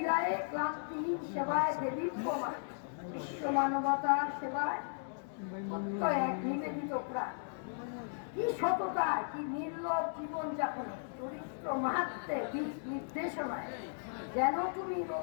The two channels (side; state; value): right; silent; digital silence